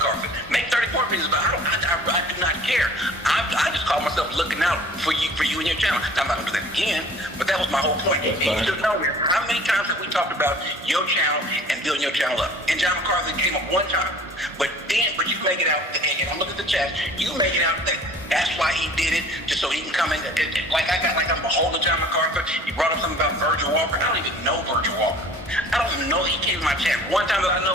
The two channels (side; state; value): both; normal; correlation 0.48